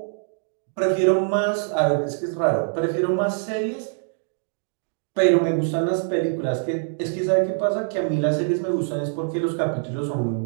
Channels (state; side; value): silent; left; digital silence